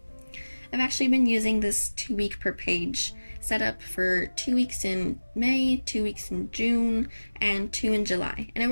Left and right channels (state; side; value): inverted; both; correlation -1.00